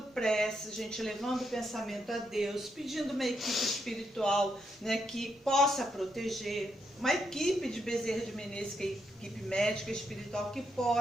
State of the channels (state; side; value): normal; both; correlation 0.79